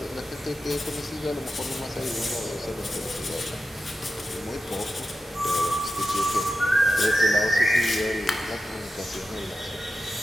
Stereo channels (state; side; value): normal; both; correlation 0.91